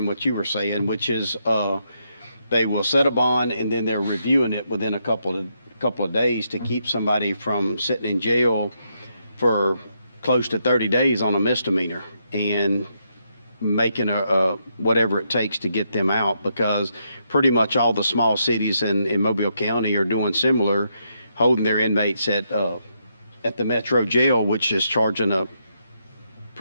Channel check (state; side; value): inverted; both; correlation -0.78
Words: what you were saying, which is they will set a bond and then they're reviewing it within a couple of days to keep somebody from sitting in jail for close to 30 days on a misdemeanor and making a whatever it takes to get them out, because pretty much all the small cities in Mobile County are doing similar, holding their inmates at the Metro jail, which is charging a